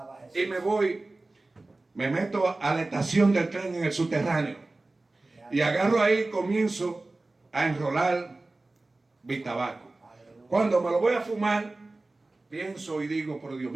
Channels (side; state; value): left; quieter; 3.1 dB